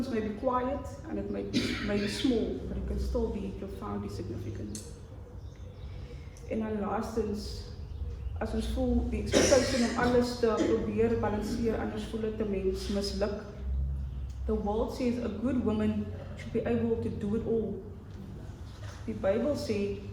may be quiet and it may be small, but it can still be profoundly significant. En dan laastens, as ons voel die expectation om alles te probeer balanseer, anders voel dit 'n mens misluk. The world says a good woman should be able to do it all. The Bible says,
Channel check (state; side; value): identical; both; correlation 1.00